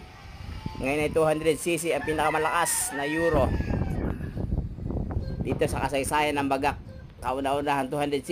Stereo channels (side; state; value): both; identical; correlation 1.00